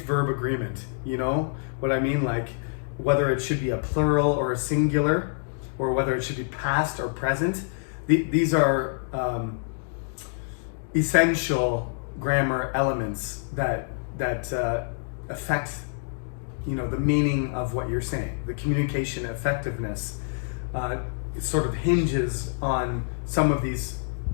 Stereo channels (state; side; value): silent; right; digital silence